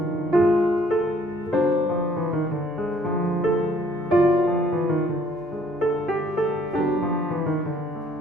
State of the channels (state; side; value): normal; both; correlation 0.61